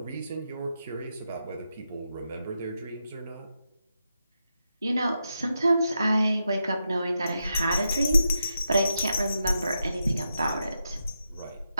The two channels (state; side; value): inverted; both; correlation -0.86